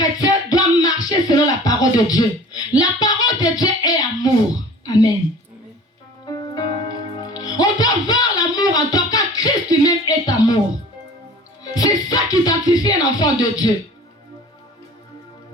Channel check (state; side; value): normal; both; correlation 0.44